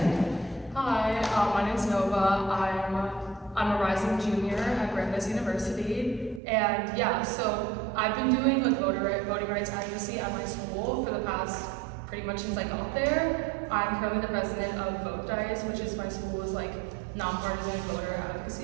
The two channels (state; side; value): drops out; left; at 6.4 s